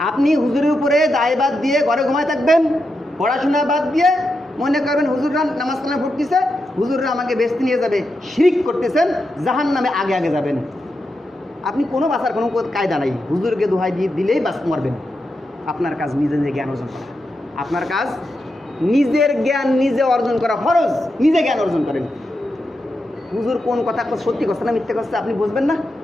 আপনি হুজুরের উপরে দায়বাদ দিয়ে ঘরে ঘুমায় থাকবেন, পড়াশোনা বাদ দিয়ে মনে করবেন হুজুররা নামাজ কালাম পড়তেছে, হুজুররা আমাকে বেচতে নিয়ে যাবে, শিরক করতেছেন, জাহান্নামে আগে যাবেন। আপনি কোনো বাঁচার কোনো কায়দা নাই, হুজুরকে দোহাই দিয়ে দিলেই বাঁচ মরবেন। আপনার কাজ নিজে জ্ঞান অর্জন করা, আপনার কাজ নিজের জ্ঞান নিজে অর্জন করা ফরজ, নিজে জ্ঞান অর্জন করেন। হুজুর কোন কথা সত্যি করছে না মিথ্যে করছে আপনি বুঝবেন না,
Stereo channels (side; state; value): both; normal; correlation 0.86